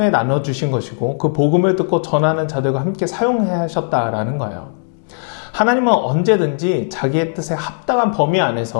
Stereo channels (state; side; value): silent; right; digital silence